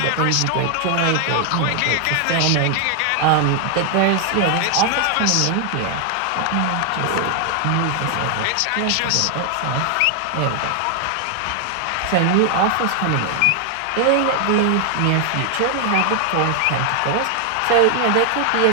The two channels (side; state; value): both; different; correlation 0.00